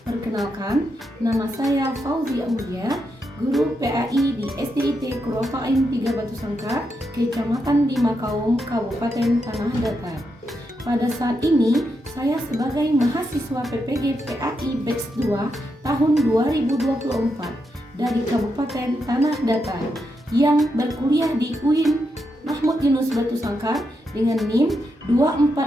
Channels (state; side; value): normal; both; correlation 0.83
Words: Perkenalkan, nama saya Fauzi Aulia, guru PAI di SDIT Kurofain 3 Batu Sangkar, Kecamatan Dimakaum, Kabupaten Tanah Datar. Pada saat ini, saya sebagai mahasiswa PPG PAI Batch 2 tahun 2024 dari Kabupaten Tanah Datar yang berkuliah di UIN Mahmud Yunus Batu Sangkar dengan NIM